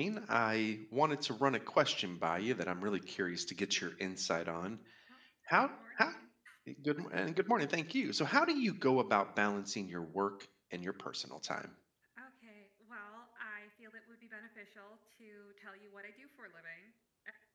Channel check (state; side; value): identical; both; correlation 1.00